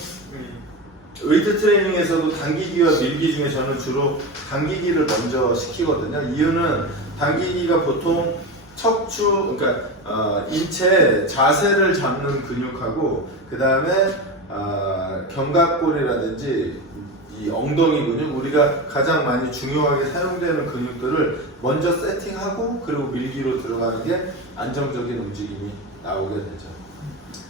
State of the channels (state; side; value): normal; both; correlation 0.21